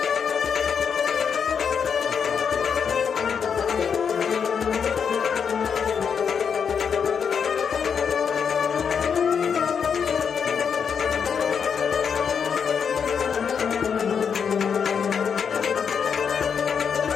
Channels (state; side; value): quieter; right; 6.8 dB